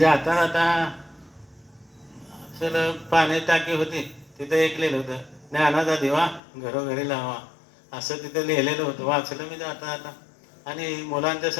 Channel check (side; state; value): right; drops out; at 6.4 s